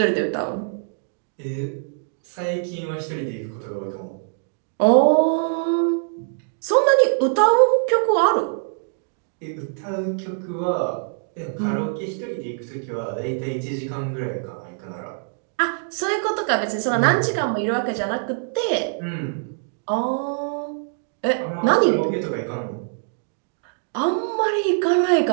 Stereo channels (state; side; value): silent; left; digital silence